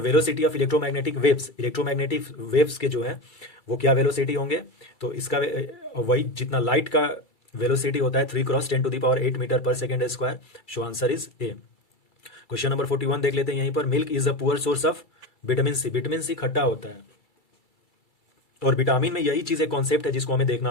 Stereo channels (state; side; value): late; right; 2.3 ms